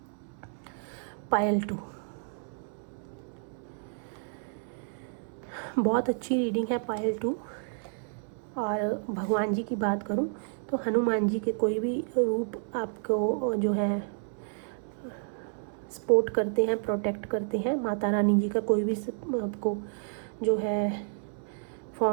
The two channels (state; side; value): silent; left; 57 dB below the other